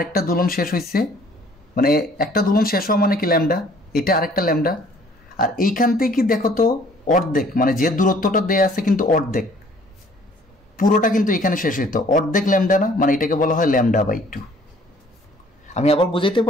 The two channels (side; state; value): both; normal; correlation 0.57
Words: দুলন শেষ হয়েছে, মানে একটা দুলন শেষ হওয়া মানে কি ল্যামডা, এটা আরেকটা ল্যামডা। আর এইখান থেকে দেখো তো অর্ধেক, মানে যে দূরত্বটা দেয়া আছে কিন্তু অর্ধেক, পুরোটা কিন্তু এখানে শেষ হইতো, অর্ধেক ল্যামডা না? মানে এটাকে বলা হয় ল্যামডা বাই 2। আমি আবার বুঝাইতে